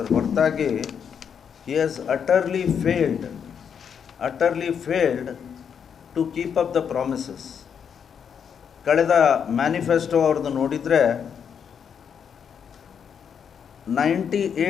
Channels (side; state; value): right; quieter; 7.4 dB